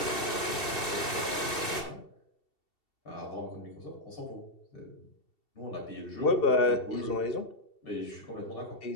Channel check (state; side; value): late; right; 2.7 ms